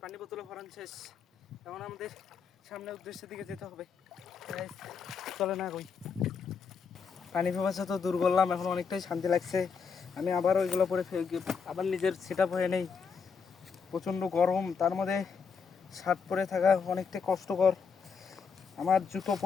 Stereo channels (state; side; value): quieter; right; 5.8 dB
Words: পানি বোতলে ভরান শেষ, এখন আমাদের সামনে উদ্দেশ্যের দিকে যেতে হবে। গাইস চলে না কই, পানি পিপাসা তো দূর করলাম, এখন অনেকটাই শান্তি লাগছে। আমি আবার ওইগুলো পরে আবার নিজের সেট আপ হয়ে নেই, প্রচণ্ড গরম, তার মধ্যে শার্ট পরে থাকা অনেকটাই কষ্টকর। আমার জুতো